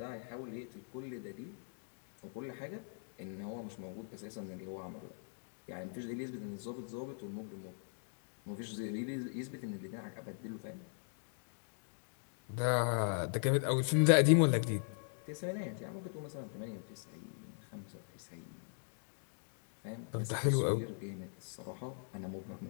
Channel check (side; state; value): right; silent; digital silence